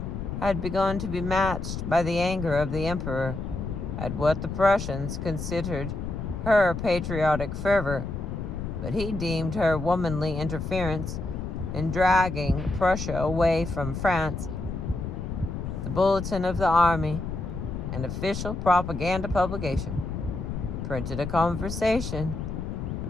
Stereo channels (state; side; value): noise; left; rumble, 5 dB below the sound